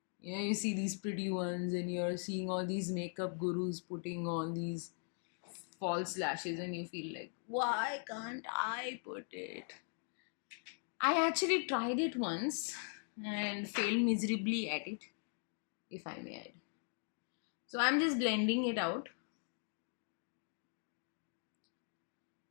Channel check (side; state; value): right; silent; 51 dB below the other